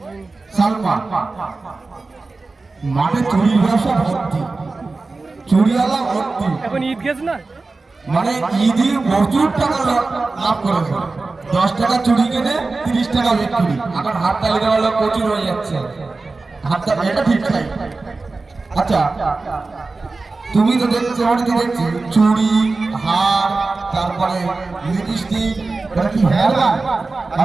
সালমা, মাঠে চুরির ব্যবসা ভর্তি, চুরিওয়ালা ভর্তি। এখন ঈদ গেছে না মানে ঈদে প্রচুর টাকা লাভ করেছে। 10 টাকা চুরি কিনে 30 টাকা বিক্রি। এখন হাত তালি দেওয়া লোক প্রচুর হয়ে যাচ্ছে। হাত তালি এটা ঠিক নাই। আচ্ছা তুমি তো দেখছো, আমি তো দেখছি চুড়ি, হার, তারপরে লিপস্টিক, এটা কি হেয়ার ব্যান্ড?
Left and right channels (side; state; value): left; quieter; 3.7 dB